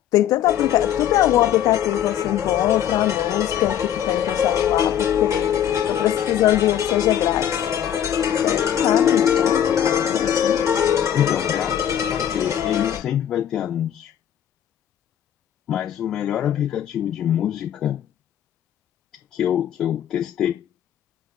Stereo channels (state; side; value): quieter; right; 10.2 dB